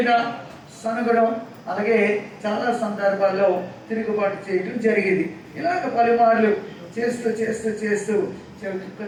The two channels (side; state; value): both; identical; correlation 1.00